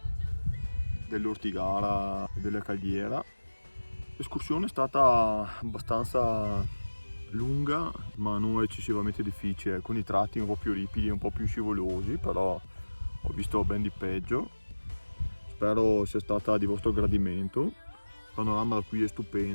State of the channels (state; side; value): inverted; both; correlation -1.00